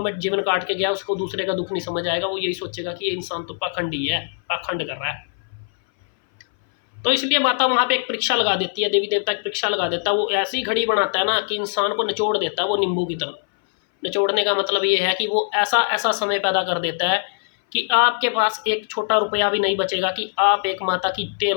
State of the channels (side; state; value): right; silent; 60 dB below the other